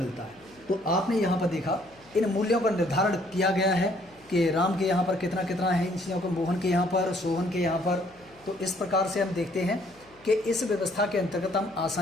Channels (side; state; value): left; noise; hum, 29 dB below the sound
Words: है। तो आपने यहाँ पर देखा इन मूल्यों का निर्धारण किया गया है कि राम के यहाँ पर कितना कितना है इन चीज़ों को, मोहन के यहाँ पर, सोहन के यहाँ पर। तो इस प्रकार से हम देखते हैं कि इस व्यवस्था के अंतर्गत हम